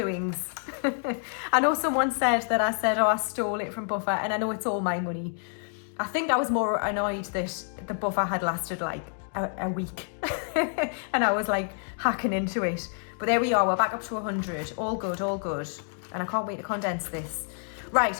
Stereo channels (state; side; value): silent; right; 57 dB below the other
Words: I know someone said that I said, oh, I stole it from buffer, and I know it's all my money. I think I was more annoyed that the buffer had lasted like a week and I was like hacking into it. But there we are, we're back up to 100. All good, all good. And I can't wait to condense this.